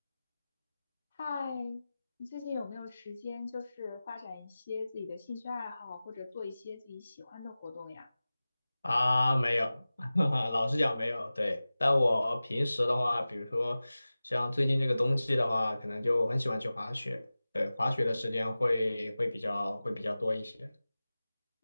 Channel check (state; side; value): inverted; both; correlation -0.97